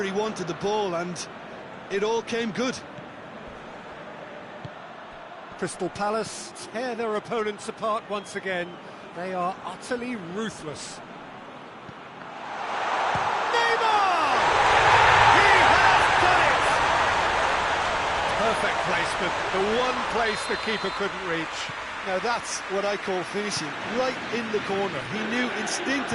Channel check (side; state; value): both; identical; correlation 1.00